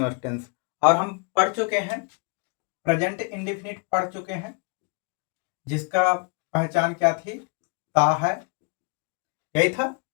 टेंस और हम पढ़ चुके हैं प्रेजेंट इंडेफिनिट पढ़ चुके हैं, जिसका पहचान क्या थी? ता है, यही था,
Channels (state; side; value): quieter; right; 34.3 dB